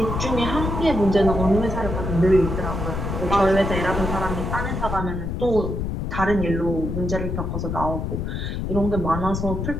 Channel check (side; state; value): left; noise; rumble, 3 dB below the sound